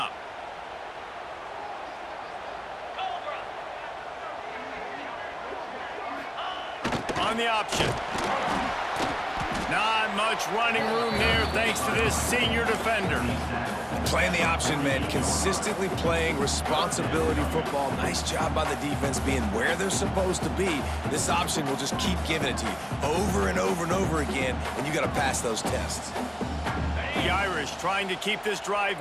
On the option. Not much running room there thanks to this senior defender. Playing the option, man, consistently playing responsibility football. Nice job by the defense being where they're supposed to be. This option will just keep giving it to you over and over and over again, and you got to pass those tests. The Irish trying to keep this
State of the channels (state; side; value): identical; both; correlation 1.00